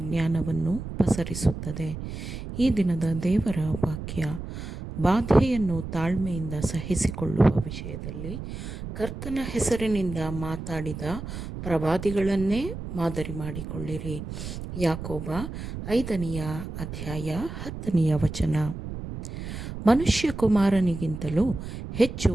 ಜ್ಞಾನವನ್ನು ಪಸರಿಸುತ್ತದೆ. ಈ ದಿನದ ದೇವರ ವಾಕ್ಯ, ಬಾಧೆಯನ್ನು ತಾಳ್ಮೆಯಿಂದ ಸಹಿಸಿಕೊಳ್ಳುವ ವಿಷಯದಲ್ಲಿ ಕರ್ತನ ಹೆಸರಿನಿಂದ ಮಾತಾಡಿದ ಪ್ರವಾದಿಗಳನ್ನೇ ಮಾದರಿ ಮಾಡಿಕೊಳ್ಳಿರಿ. ಯಾಕೋಬ 5ನೇ ಅಧ್ಯಾಯ 10ನೇ ವಚನ. ಮನುಷ್ಯಕುಮಾರನಿಗಿಂತಲೂ ಹೆಚ್ಚು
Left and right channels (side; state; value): right; noise; rumble, 8 dB below the sound